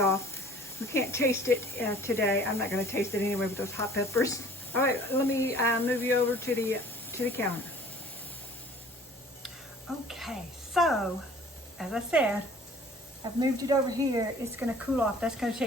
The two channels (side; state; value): both; normal; correlation 0.50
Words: We can't taste it today. I'm not going to taste it anyway with those hot peppers. All right, let me move you over to the counter. Okay, so as I said, I've moved it over here. It's going to cool off. That's going to